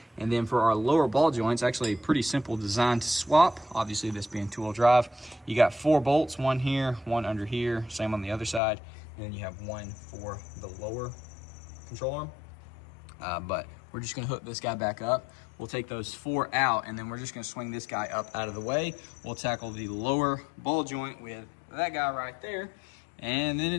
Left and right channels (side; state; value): right; drops out; at 8.6 s